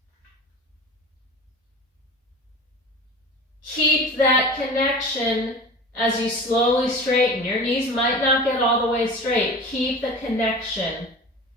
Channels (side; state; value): both; normal; correlation 0.36